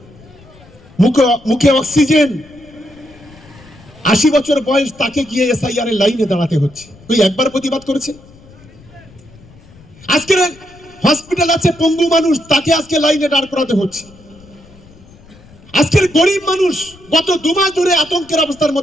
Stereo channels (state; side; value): noise; left; rumble, 24 dB below the sound